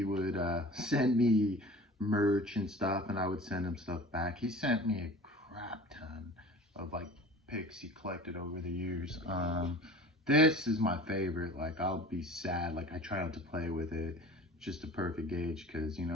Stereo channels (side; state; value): both; normal; correlation 0.40